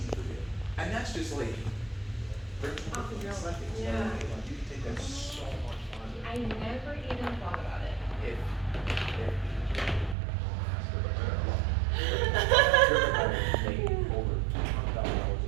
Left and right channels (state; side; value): drops out; left; at 10.2 s